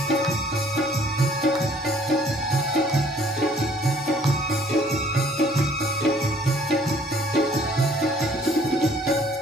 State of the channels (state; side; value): normal; both; correlation 0.58